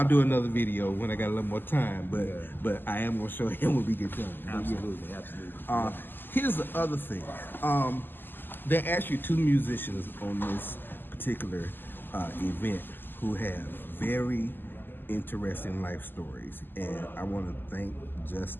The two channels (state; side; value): late; right; 0.094 ms